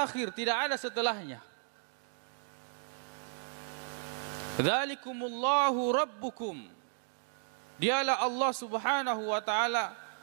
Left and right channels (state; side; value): silent; left; digital silence